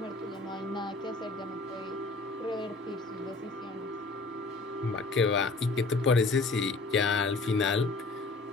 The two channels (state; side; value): quieter; right; 3.5 dB